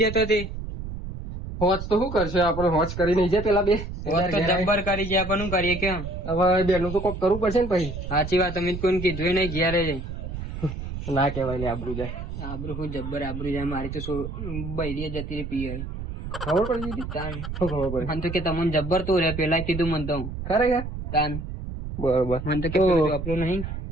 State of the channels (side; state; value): right; noise; rumble, 7 dB below the sound